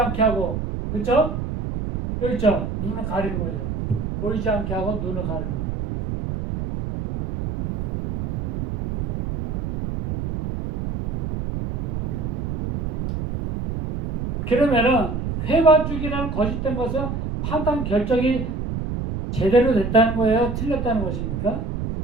하고, 그렇죠? 여기 있죠? 눈을 가리는 거죠. 보이지 않게 하고 눈을 가리는 거예요. 그러면은 회반죽이라는 거짓된 것은 판단 결정이 제대로 됐다는 거예요? 틀렸다는 것입니까?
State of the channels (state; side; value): noise; right; rumble, 2 dB below the sound